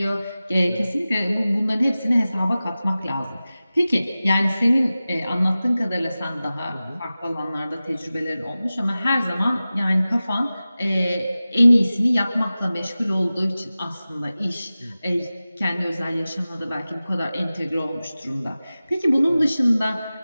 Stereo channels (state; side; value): inverted; both; correlation -0.96